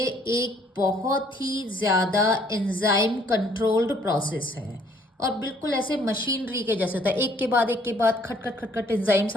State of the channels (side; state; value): both; normal; correlation 0.62